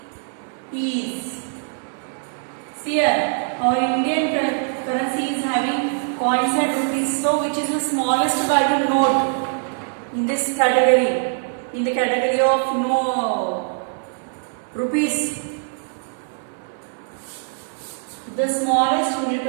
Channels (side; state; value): left; silent; digital silence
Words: is. See here, our Indian currency is having coins and rupees. So, which is the smallest value note? in this category, in the category of no rupees. The smallest unit